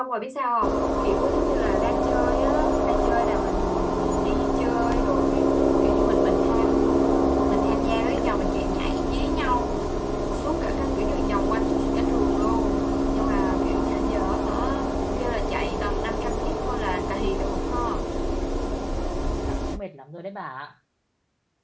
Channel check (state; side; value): identical; both; correlation 1.00